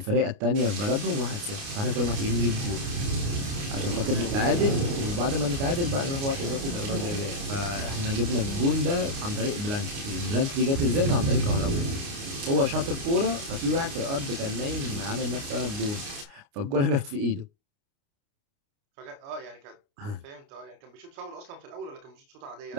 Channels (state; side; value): late; left; 29 ms